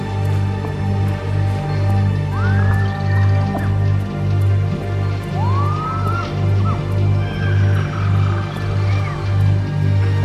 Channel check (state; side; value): identical; both; correlation 1.00